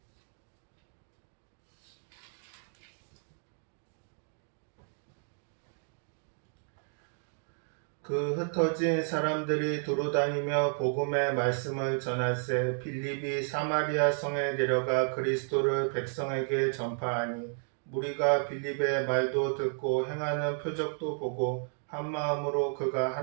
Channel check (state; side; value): silent; left; 56 dB below the other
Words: 그 흩어진 사람들이 두루다니며 복음의 말씀을 전할세 빌립이 사마리아 성에 내려가 그리스도를 백성에게 전파하니 무리가 빌립의 말도 듣고 행하는 표적도 보고 한 마음으로 그가